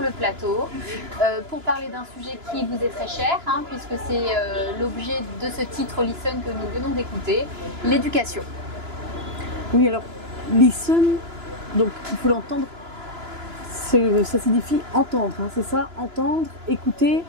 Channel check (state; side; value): late; left; 2.9 ms